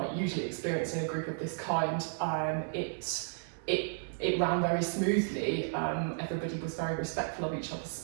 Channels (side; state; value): left; silent; digital silence